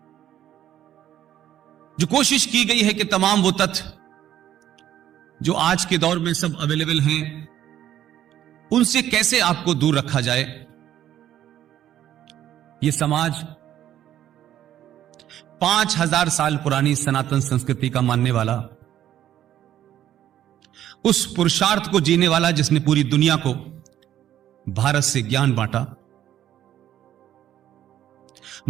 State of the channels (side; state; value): left; quieter; 11.6 dB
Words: जो कोशिश की गई है कि तमाम वो तथ्य जो आज के दौर में सब अवेलेबल हैं, उनसे कैसे आपको दूर रखा जाए। यह समाज 5000 साल पुरानी सनातन संस्कृति का मानने वाला, उस पुरुषार्थ को जीने वाला जिसने पूरी दुनिया को भारत से ज्ञान बांटा,